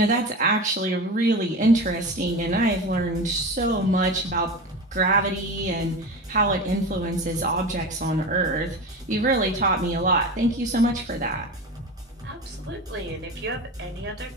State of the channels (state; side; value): normal; both; correlation 0.28